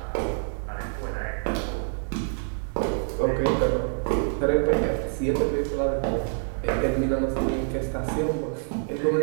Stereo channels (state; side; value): silent; left; 61 dB below the other